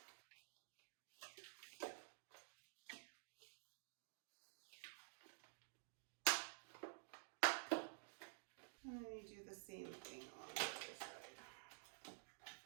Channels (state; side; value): silent; left; digital silence